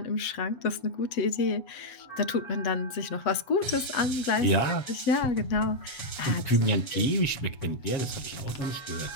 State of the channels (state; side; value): late; right; 7.5 ms